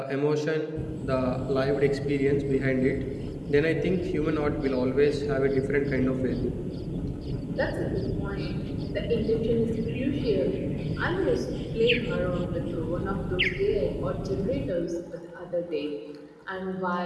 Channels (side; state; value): both; identical; correlation 1.00